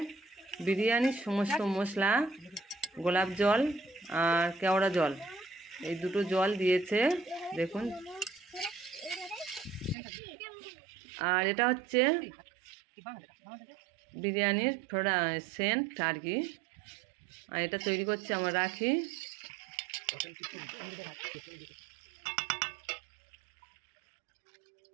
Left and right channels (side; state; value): left; drops out; at 10.0 s